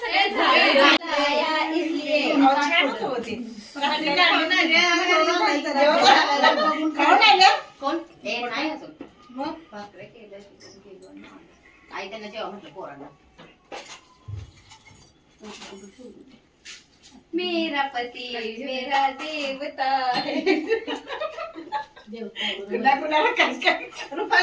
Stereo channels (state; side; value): identical; both; correlation 1.00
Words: सगळं झालं इसलिए कोण ए नाही अजून मग भाकरे केलं चिकन केलं आई त्यांना जेव्हा म्हटलं पोरांना. मेरा पति मेरा देवता है.